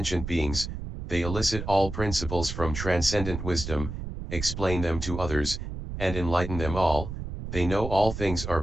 beings. They elicit all principles from transcendent wisdom, explain them to others, and enlighten them all. They know all things are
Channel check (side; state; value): right; noise; rumble, 7 dB below the sound